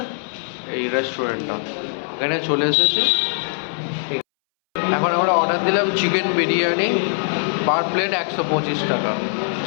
এই রেস্টুরেন্টটা। এখানে চলে এসেছি। এখন আমরা অর্ডার দিলাম চিকেন বিরিয়ানি, পার প্লেট 125 টাকা।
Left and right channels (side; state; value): right; silent; 62 dB below the other